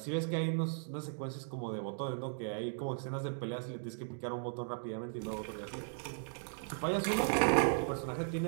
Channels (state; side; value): silent; left; digital silence